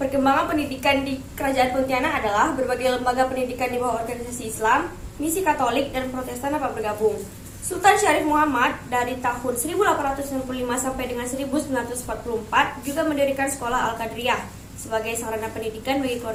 Perkembangan pendidikan di Kerajaan Pontianak adalah berbagai lembaga pendidikan di bawah organisasi Islam, misi Katolik, dan Protestan dapat bergabung. Sultan Syarif Muhammad dari tahun 1865 sampai dengan 1944 juga mendirikan sekolah Al-Qadriyah sebagai sarana pendidikan bagi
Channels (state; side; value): identical; both; correlation 1.00